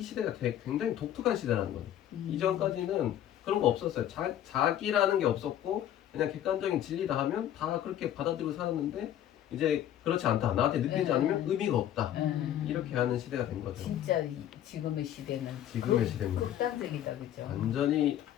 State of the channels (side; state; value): right; quieter; 11.4 dB